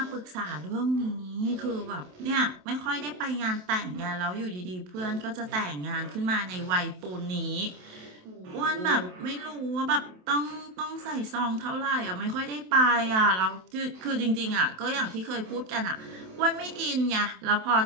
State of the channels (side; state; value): left; late; 27 ms